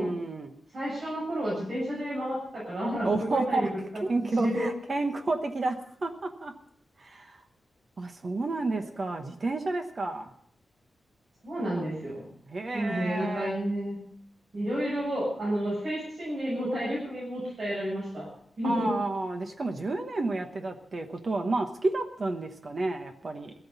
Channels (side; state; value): both; normal; correlation 0.91